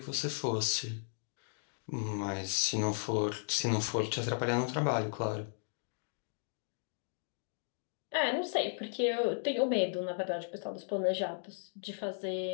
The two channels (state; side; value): silent; right; digital silence